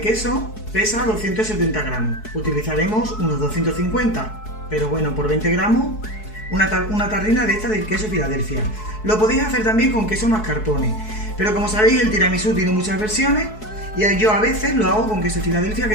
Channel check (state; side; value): late; right; 4.7 ms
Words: pesa 270 gramos, utilizaremos unos 250, pero bueno, por 20 gramos una tarrina de esta de queso Filadelfia. Lo podéis hacer también con queso mascarpone, pero como sabéis el tiramisú tiene muchas versiones y yo a veces lo hago con queso Filadelfia,